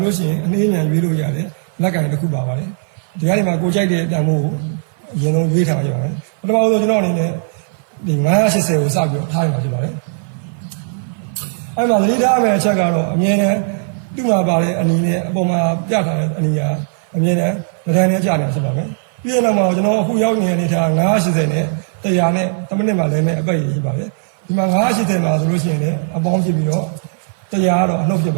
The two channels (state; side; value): silent; left; 56 dB below the other